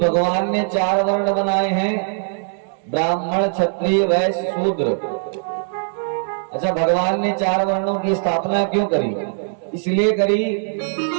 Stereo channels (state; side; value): silent; left; digital silence